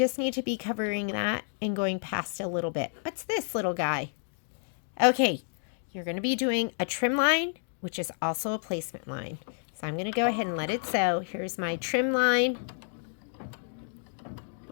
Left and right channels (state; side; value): silent; right; digital silence